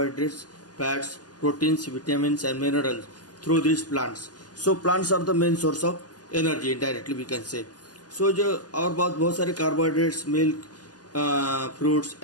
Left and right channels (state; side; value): late; right; 0.69 ms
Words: fats, proteins, vitamins and minerals through this plants. So plants are the main source of energy indirectly we can say. So जो और बहुत सारे carbohydrates, milk, fruits,